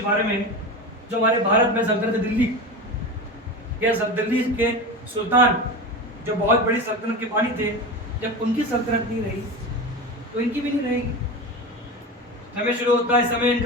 बारे में, जो हमारे भारत में सल्तनत दिल्ली या दिल्ली के सुल्तान, जो बहुत बड़ी सल्तनत के बानी थे, जब उनकी सल्तनत नहीं रही तो इनकी भी नहीं रहेगी। समय शुरू होता है समय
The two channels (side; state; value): both; normal; correlation 0.26